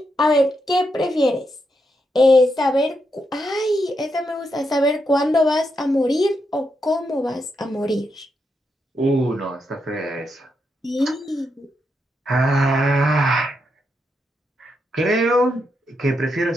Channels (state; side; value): normal; both; correlation 0.82